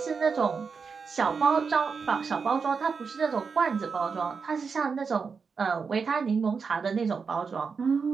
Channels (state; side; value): quieter; left; 5.4 dB